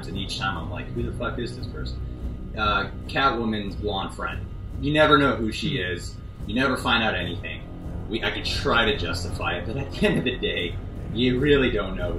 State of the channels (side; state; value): both; identical; correlation 1.00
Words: and each time I'm like, who the fuck is this person? Catwoman's blonde friend. You never know who she is. You never find out anything. I could try to justify it, but at the end of the day, you really don't know